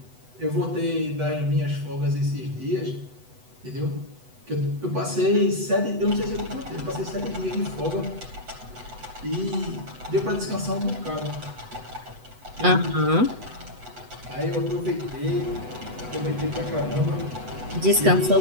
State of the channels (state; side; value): late; left; 8.0 ms